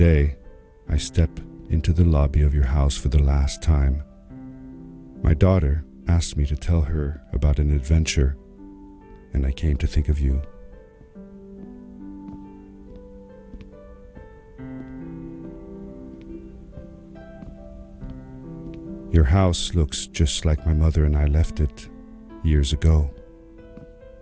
I step into the lobby of your house for the last time. My daughter asked me to tell her about an adventure, and I came to think of you. Your house looks just like my mother and I left it years ago.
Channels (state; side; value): identical; both; correlation 1.00